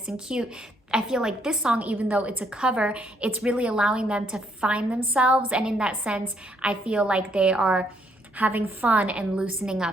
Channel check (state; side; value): normal; both; correlation 0.70